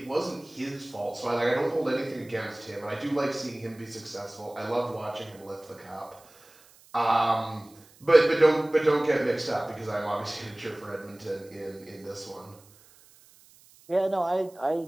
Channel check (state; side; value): noise; right; hiss, 26 dB below the sound